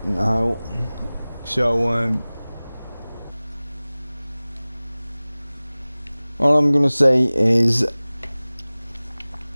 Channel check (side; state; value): both; inverted; correlation -0.99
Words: now. So all I'm gonna say is